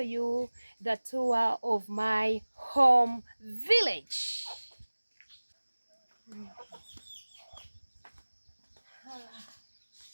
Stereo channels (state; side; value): inverted; both; correlation -1.00